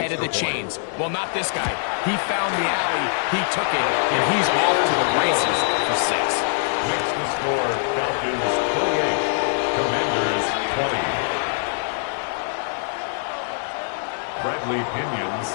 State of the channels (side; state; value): right; silent; 63 dB below the other